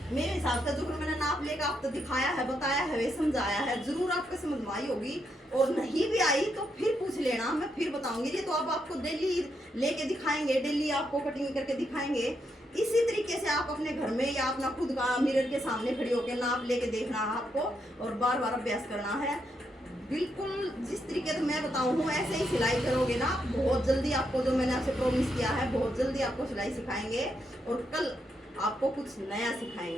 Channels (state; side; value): normal; both; correlation 0.80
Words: मेरे हिसाब से जो मैंने नाप लेकर आपको दिखाया है, बताया है, समझाया है, जरूर आपको समझ में आई होगी। और नहीं भी आई तो फिर पूछ लेना, मैं फिर बताऊंगी। ये तो अब आपको डेली लेके दिखाएंगे, डेली आपको कटिंग करके दिखाएंगे। इसी तरीके से आप अपने घर में या अपना खुद का मिरर के सामने खड़ी होकर नाप लेके देखना है आपको, और बार बार अभ्यास करना है। बिल्कुल जिस तरीके से मैं बताऊँ ऐसे ही सिलाई करोगे ना, बहुत जल्दी आपको, जो मैंने आपसे प्रॉमिस किया है, बहुत जल्दी आपको सिलाई सिखाएंगे, और कल आपको कुछ नया